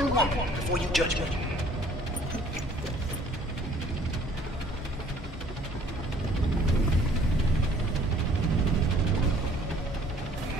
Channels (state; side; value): normal; both; correlation 0.57